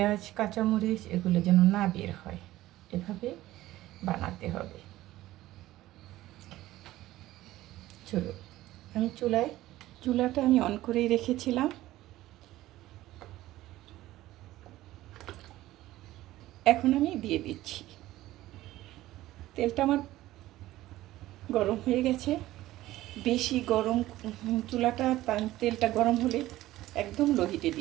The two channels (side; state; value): left; quieter; 15.8 dB